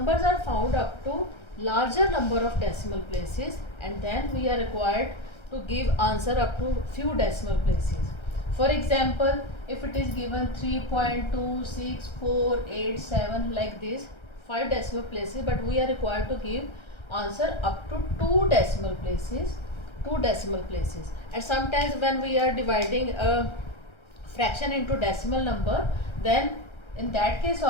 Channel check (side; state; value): right; late; 1.3 ms